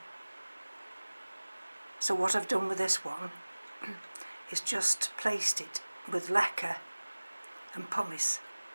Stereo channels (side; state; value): both; inverted; correlation -1.00